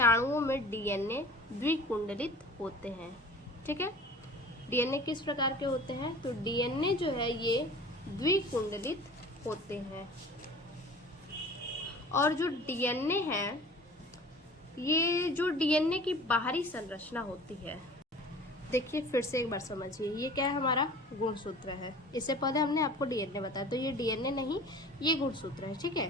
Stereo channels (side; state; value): both; normal; correlation 0.43